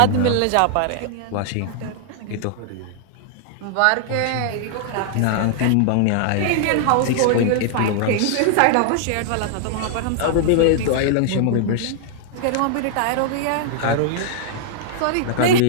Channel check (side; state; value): both; different; correlation -0.01